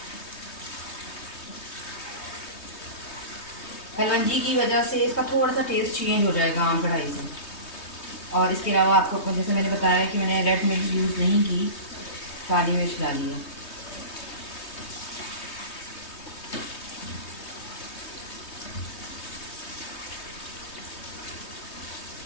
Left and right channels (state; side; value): late; right; 3.2 ms